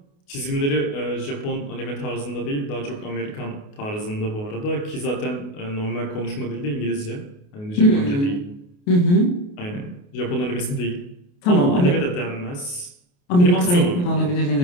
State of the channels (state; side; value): late; right; 28 ms